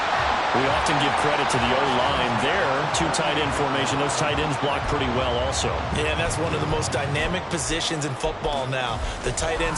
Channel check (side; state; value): both; identical; correlation 1.00